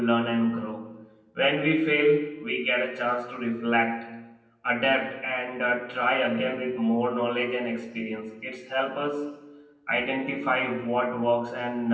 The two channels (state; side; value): identical; both; correlation 1.00